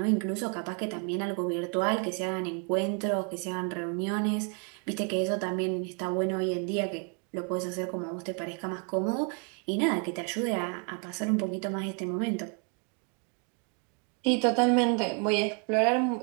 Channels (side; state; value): left; quieter; 38.5 dB